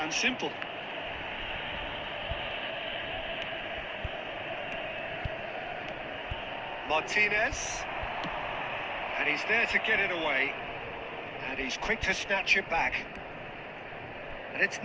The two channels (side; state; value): both; identical; correlation 1.00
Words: simple. Martinez, and he's there to get it away, and he's quick to snatch it back, and it's